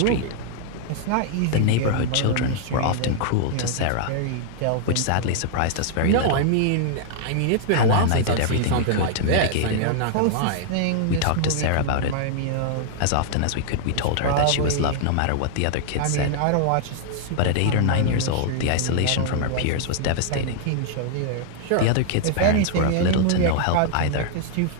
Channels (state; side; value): different; both; correlation -0.01